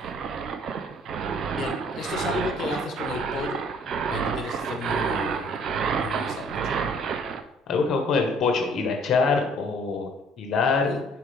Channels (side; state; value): both; normal; correlation 0.57